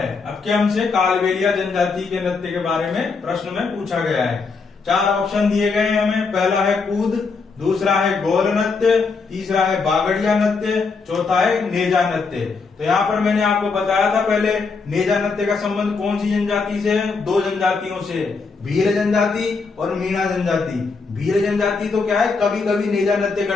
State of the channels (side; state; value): right; quieter; 4.6 dB